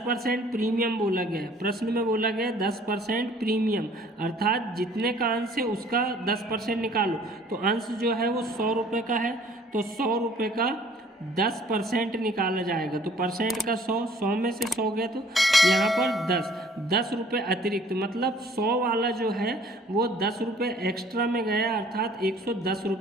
प्रीमियम बोला गया है। प्रश्न में बोला गया है 10% प्रीमियम, अर्थात जितने का अंश है उसका 10% निकालो। तो अंश जो है वो 100 रुपये का है, तो 100 रुपये का 10% निकाला जाएगा। तो परसेंट का 100 में से 100 गया, तो यहाँ पर 10 रुपये अतिरिक्त, मतलब 100 वाला जो है वो 10 रुपये एक्स्ट्रा में गया, अर्थात 110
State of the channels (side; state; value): both; normal; correlation 0.56